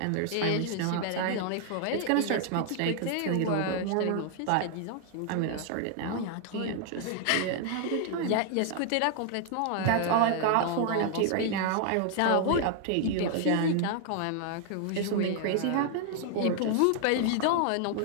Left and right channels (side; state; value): both; different; correlation 0.00